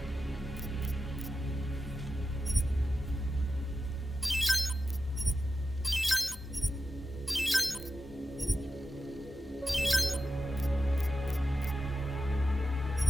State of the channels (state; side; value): normal; both; correlation 0.91